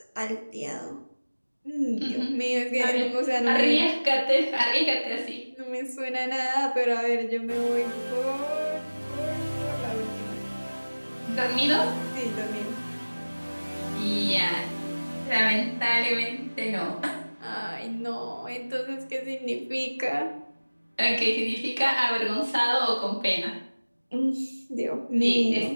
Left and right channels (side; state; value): both; inverted; correlation -1.00